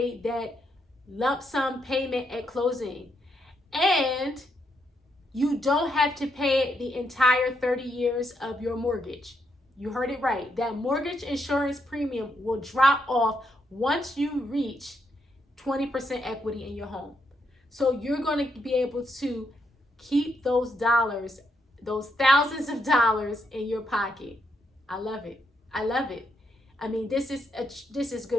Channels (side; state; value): both; normal; correlation 0.78